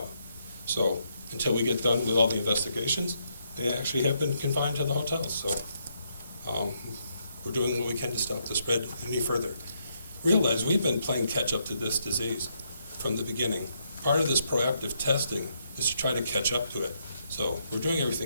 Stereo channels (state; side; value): inverted; both; correlation -0.77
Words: So until we get done with all the investigations, they actually have been confined to the hotels. So we're doing what we can to stop the spread any further. Realize we've been playing catch up to this disease from the beginning. Part of this proactive testing is to try to catch up to it. So we're doing